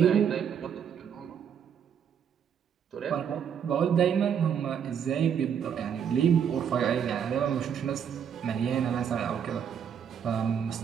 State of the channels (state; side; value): quieter; left; 8.0 dB